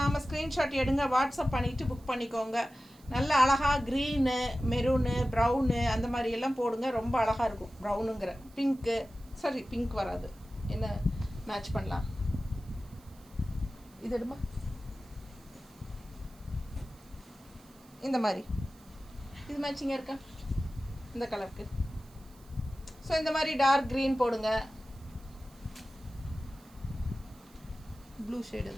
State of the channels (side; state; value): right; noise; hiss, 27 dB below the sound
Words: ஸ்க்ரீன்ஷாட் எடுங்க, வாட்ஸ்அப் பண்ணிவிட்டு புக் பண்ணிக்கோங்க. நல்ல அழகாக க்ரீனு, மெரூனு, ப்ரௌனு அந்த மாதிரி எல்லாம் போடுங்க, ரொம்ப அழகாக இருக்கும். ப்ரௌனுங்கிற பிங்க்கு, சாரி பிங்க் வராது, என்ன மேட்ச் பண்ணலாம். இது எடுமா, இந்த மாதிரி இது மேட்சிங்காக இருக்கா இந்த கலருக்கு? ஸோ இந்த மாதிரி டார்க் க்ரீன் போடுங்க. ப்ளூ ஷேடு